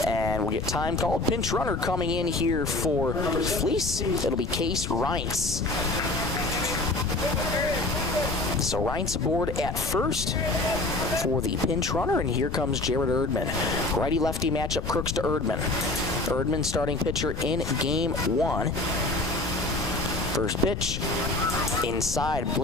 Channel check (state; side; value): noise; left; rumble, 5 dB below the sound